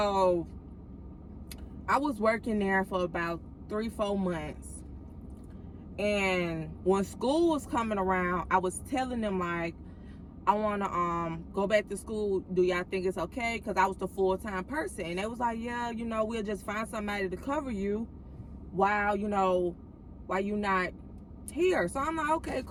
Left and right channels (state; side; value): identical; both; correlation 1.00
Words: I was working there for about 3-4 months, and when school was coming around, I was telling them, like, I want to go back to school. Do y'all think it's okay? Because I was the full-time person. And they was like, yeah, we'll just find somebody to cover you while you're not here. So I'm like, okay,